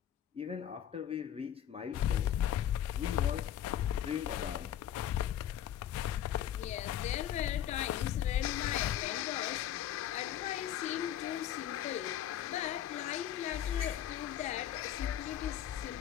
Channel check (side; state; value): right; quieter; 10.8 dB